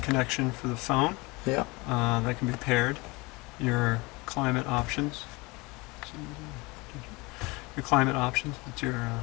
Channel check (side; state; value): right; quieter; 24.9 dB